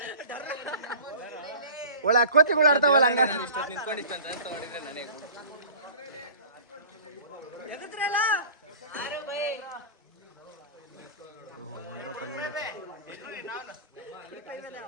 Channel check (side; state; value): both; inverted; correlation -0.41